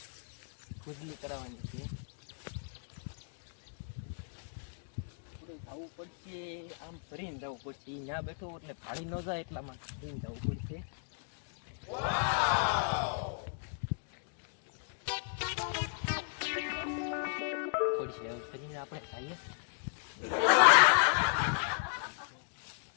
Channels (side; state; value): right; silent; digital silence